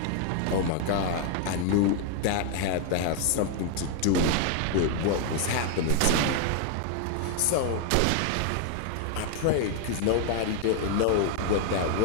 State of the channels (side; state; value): both; different; correlation 0.00